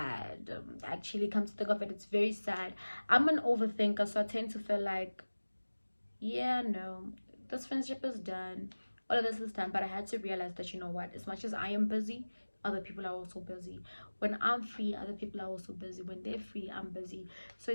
Actually, come to think of it, it's very sad. I'm an overthinker, so I tend to feel like, yeah, no, this friendship is done, all of this is done. But I had to realize that, you know what, as much as I am busy, other people are also busy. When I'm free, other people are also busy. When they're free, I'm busy. So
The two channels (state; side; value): inverted; both; correlation -1.00